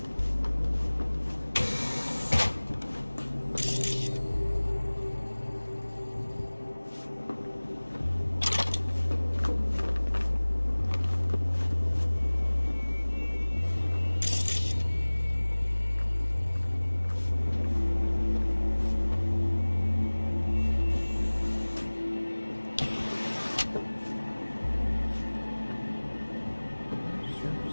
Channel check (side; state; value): both; inverted; correlation -1.00